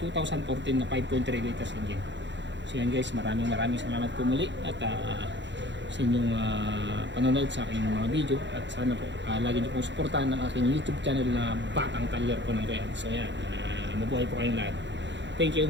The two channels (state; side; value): late; left; 0.52 ms